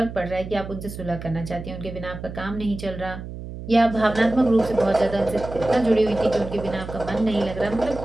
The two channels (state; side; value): noise; right; hum, 10 dB below the sound